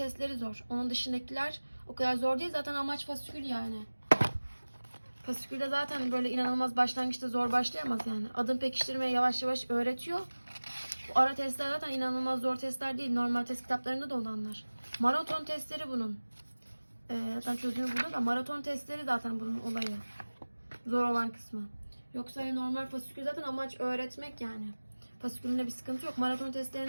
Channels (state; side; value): inverted; both; correlation -1.00